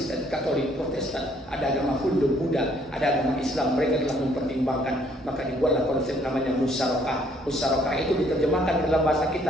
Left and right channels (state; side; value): normal; both; correlation 0.64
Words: Katolik, Protestan, ada agama Hindu, Buddha, ada agama Islam. Mereka telah mempertimbangkan, maka dibuatlah konsep namanya musyarakah. Musyarakah itu diterjemahkan dalam bahasa